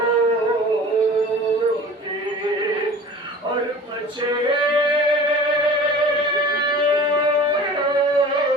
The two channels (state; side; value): normal; both; correlation 0.41